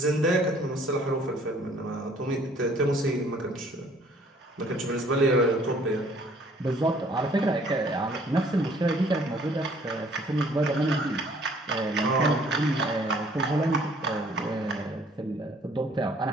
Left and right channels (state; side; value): normal; both; correlation 0.58